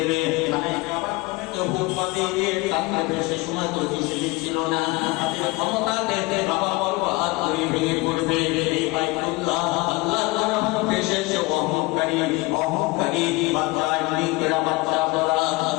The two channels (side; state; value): right; quieter; 23.3 dB